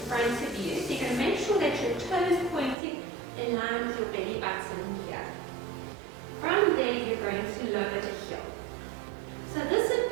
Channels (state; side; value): drops out; left; at 2.8 s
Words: of you. So you're going to make sure that your toe is pointing in line with your belly button here. From there, you're going to lower the heel. So this would